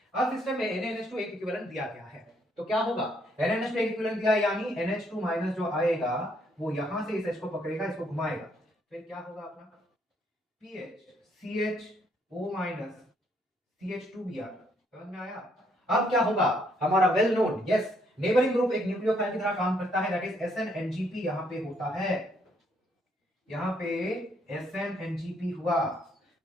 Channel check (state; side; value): normal; both; correlation 0.70